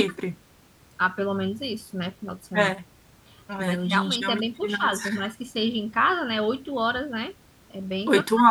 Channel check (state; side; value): identical; both; correlation 1.00